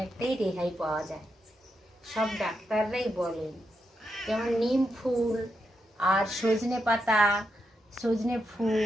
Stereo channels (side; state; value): both; normal; correlation 0.84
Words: রেহাই পাওয়া যায়। সব ডাক্তাররাই বলেন, যেমন নিম ফুল আর সজনে পাতা, সজনে